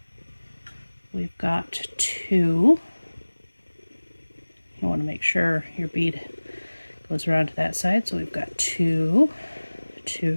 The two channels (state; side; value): inverted; both; correlation -1.00